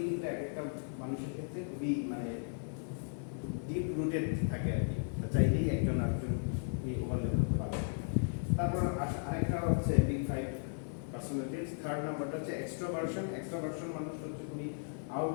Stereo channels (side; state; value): right; silent; 54 dB below the other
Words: কিন্তু এক একটা মানুষের ক্ষেত্রে খুবই মানে ডিপ রুটেড থাকে আর কি, চাইলেই একজন আরেকজন ওভারল্যাপ করতে পারবে। তারপর আরেকটা হচ্ছে বিগ ফাইভ পার্সোনালিটিস। থার্ড নাম্বারটা হচ্ছে এক্সট্রোভার্সন মানুষ হচ্ছে খুবই